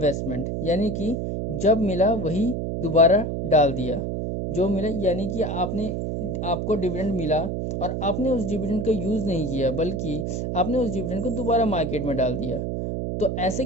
यानी कि जब मिला वही दोबारा डाल दिया, जो मिला यानी कि आपको डिविडेंड मिला और आपने उस डिविडेंड का यूज़ नहीं किया बल्कि आपने उस डिविडेंड को दोबारा मार्केट में डाल दिया। तो ऐसे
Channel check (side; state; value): right; noise; hum, 2 dB below the sound